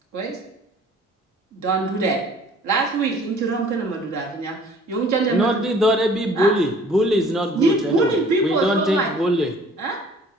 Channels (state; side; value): normal; both; correlation 0.52